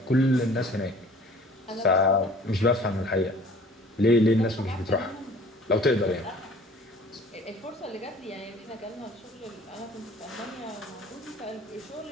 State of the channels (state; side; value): normal; both; correlation 0.49